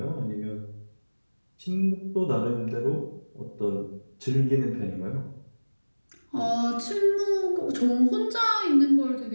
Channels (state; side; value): inverted; both; correlation -1.00